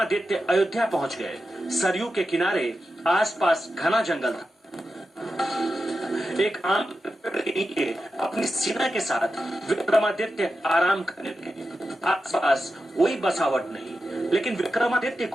अयोध्या पहुंच गए। सरयू के किनारे आसपास घना जंगल था। एक आम पेड़ के नीचे अपनी सेना के साथ विक्रमादित्य आराम करने लगे। आसपास कोई बसावट नहीं, लेकिन विक्रमादित्य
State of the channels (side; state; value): both; normal; correlation 0.91